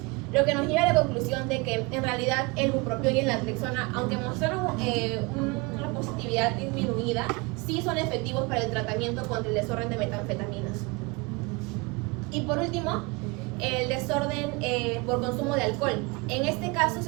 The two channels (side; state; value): left; quieter; 26.6 dB